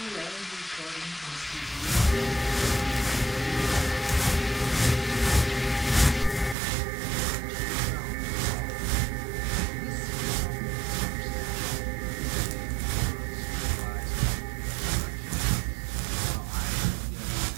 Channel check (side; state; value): left; drops out; at 6.6 s